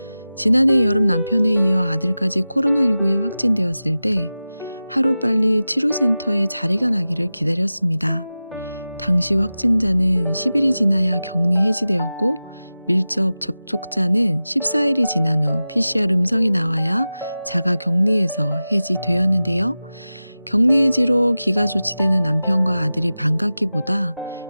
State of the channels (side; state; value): both; inverted; correlation -0.95